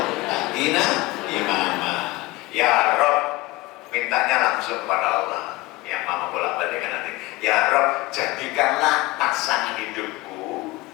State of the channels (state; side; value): quieter; right; 20.8 dB